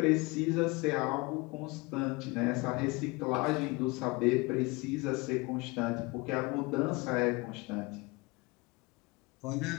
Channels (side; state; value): right; quieter; 25.4 dB